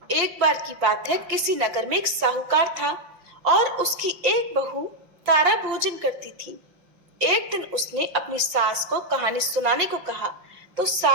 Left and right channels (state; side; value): late; left; 5.7 ms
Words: एक बार की बात है, किसी नगर में एक साहूकार था और उसकी एक बहू तारा भोजन करती थी। एक दिन उसने अपनी सास को कहानी सुनाने को कहा तो